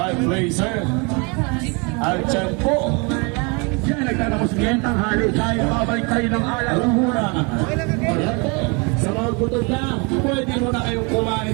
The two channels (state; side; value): quieter; left; 31.2 dB